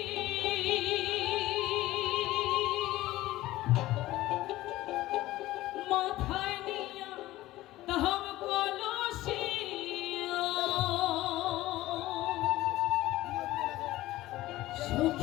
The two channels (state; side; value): quieter; right; 16.6 dB